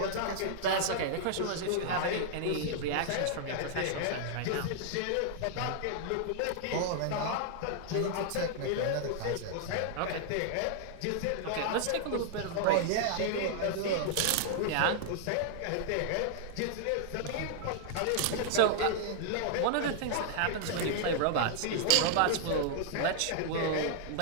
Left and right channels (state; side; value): different; both; correlation -0.01